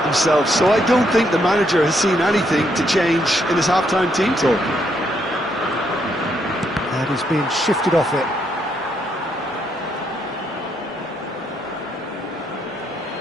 themselves, so I don't think the manager has seen anything to change in his half-time team talk. And he's been shifted off it.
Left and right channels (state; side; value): normal; both; correlation 0.75